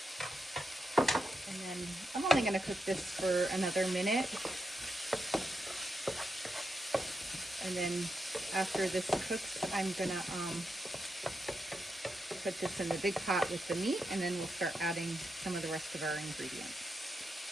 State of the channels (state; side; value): normal; both; correlation 0.84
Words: And then I'm only going to cook this for another minute. And then after this cooks, I'm going to put this in the big pot with the meat, and then we'll start adding some of the rest of our ingredients.